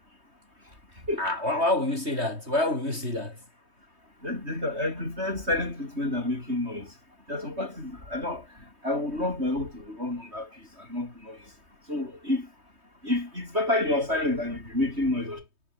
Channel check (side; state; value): left; late; 3.2 ms